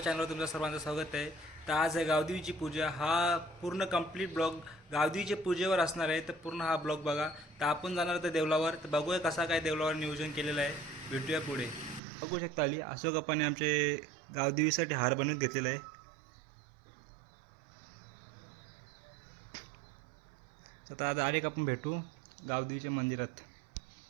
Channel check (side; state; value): left; drops out; at 12.0 s